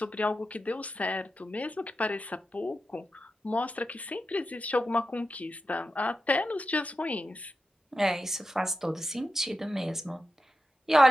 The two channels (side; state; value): both; normal; correlation 0.90